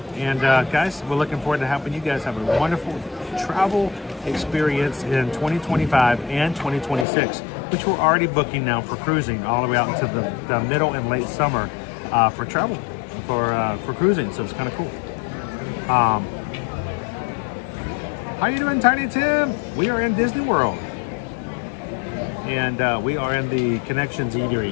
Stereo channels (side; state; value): right; drops out; at 7.1 s